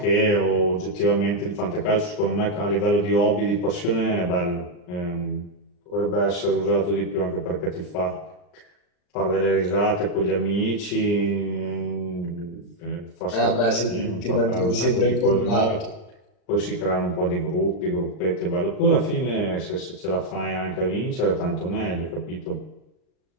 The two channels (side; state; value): right; late; 39 ms